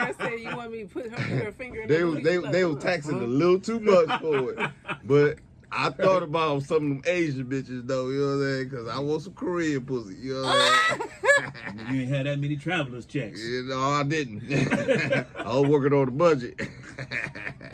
said, "You want me to put her finger in They the was booty?" they was taxing a little too much for it. But I thought about some of them Asian bitches though, you know what I'm saying? Because I want some Korean pussy, you know what I'm saying? You ain't had that many travelers checks. I didn't. I was working on the budget.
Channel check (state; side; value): identical; both; correlation 1.00